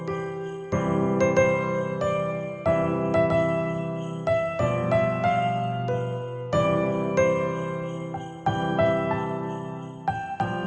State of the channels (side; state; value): both; identical; correlation 1.00